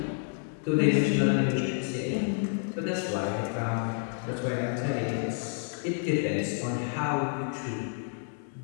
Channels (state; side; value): silent; right; 58 dB below the other